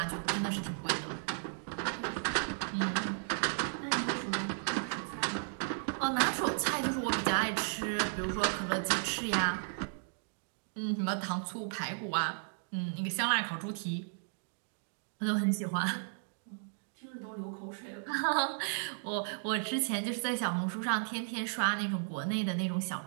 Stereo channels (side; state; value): left; silent; digital silence